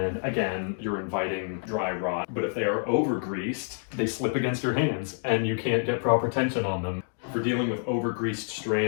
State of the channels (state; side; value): silent; right; 56 dB below the other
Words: again, you're inviting dry rot. But if they are over-greased, they slip against your hands and you can't get proper tension on them. For dealing with over-greased